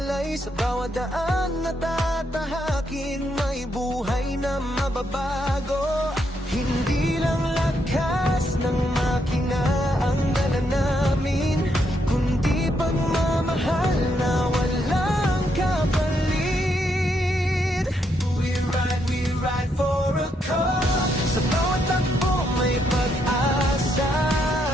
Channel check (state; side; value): normal; both; correlation 0.77